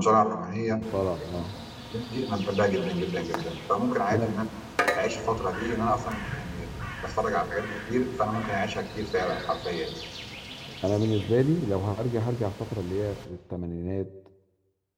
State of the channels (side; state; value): both; identical; correlation 1.00